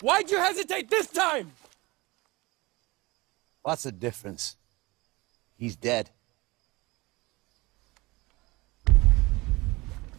you hesitate this time? What's the difference? He's dead.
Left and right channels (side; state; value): left; quieter; 22.7 dB